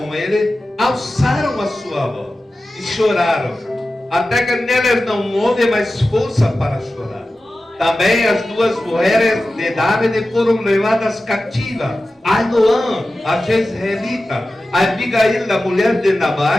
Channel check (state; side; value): normal; both; correlation 0.94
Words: ele alçaram a sua voz e choraram, até que neles não houve mais força para chorar. Também as 2 mulheres de Davi foram levadas cativas, Ainoã, a Jezreelita, a Abigail, a mulher de